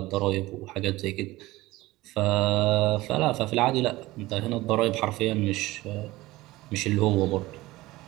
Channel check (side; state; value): left; quieter; 18.7 dB